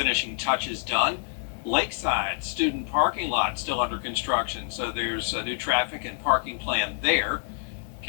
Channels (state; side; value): silent; right; 59 dB below the other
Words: touches done. Lakeside student parking lot still under construction, so there's a new traffic and parking plan there.